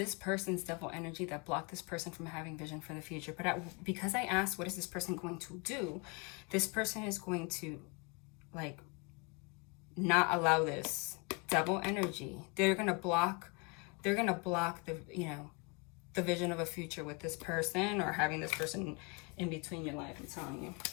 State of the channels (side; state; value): right; quieter; 31.1 dB